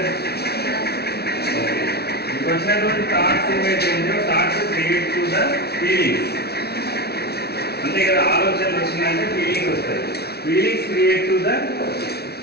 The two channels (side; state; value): right; late; 0.46 ms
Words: ఓకే, మీకు వచ్చినటువంటి థాట్స్ ఏమైతే ఉందో thoughts create to the feelings. అంతే కదా, ఆలోచనలు వచ్చిందంటే ఫీలింగ్స్ వస్తాయి. Feelings create to the